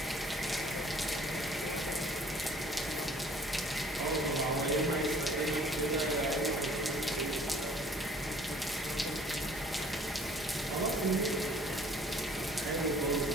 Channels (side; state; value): both; normal; correlation 0.55